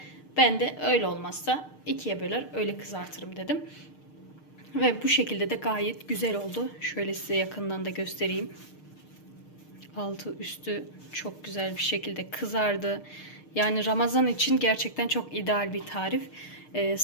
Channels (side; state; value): right; late; 6.6 ms